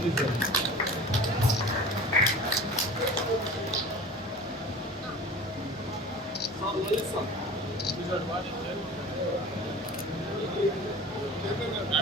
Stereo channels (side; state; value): both; normal; correlation 0.39